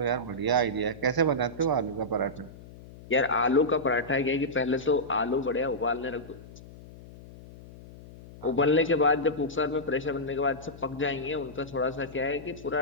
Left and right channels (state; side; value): noise; left; hum, 18 dB below the sound